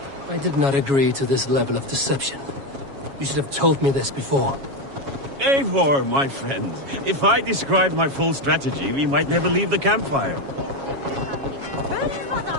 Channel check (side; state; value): left; late; 7.3 ms